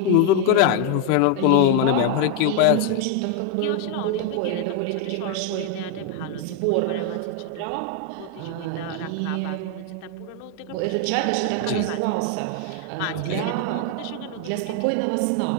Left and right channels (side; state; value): both; different; correlation 0.01